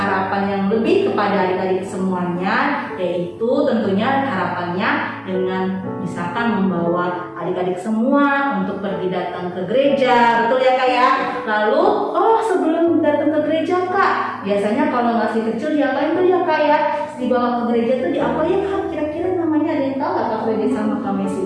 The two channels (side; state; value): both; identical; correlation 1.00